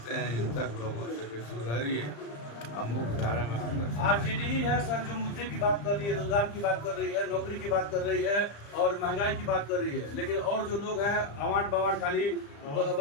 हैं हिंसक लोगों से कि सुधरिए, हम मुख्य धारा में आकर। आरजेडी ही है सर जो मुद्दे की बात कर रही है, रोजगार की बात कर रही है, नौकरी की बात कर रही है और महंगाई की बात कर रही है, लेकिन और जो लोग हैं अवार्ड बवार्ड खाली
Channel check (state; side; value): late; right; 35 ms